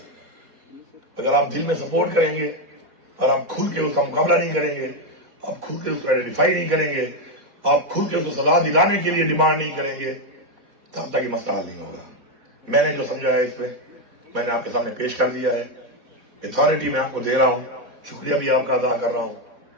اگر آپ دل میں سپورٹ کریں گے, اگر آپ کھل کے اس کا مقابلہ نہیں کریں گے, آپ کھل کے اس کو آئیڈینٹیفائی نہیں کریں گے, آپ کھل کے اس کو سزا دلانے کے لیے ڈیمانڈ نہیں کریں گے, تب تک یہ مسئلہ نہیں ہوگا. میں نے جو سمجھا ہے اس میں نے آپ کے سامنے پیش کر دیا ہے. اتھارٹی میں آپ کو دے رہا ہوں, شکریہ بھی آپ کا ادا کر رہا ہوں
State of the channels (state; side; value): late; left; 3.9 ms